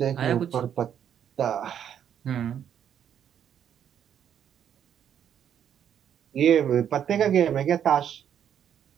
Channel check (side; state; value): left; quieter; 9.2 dB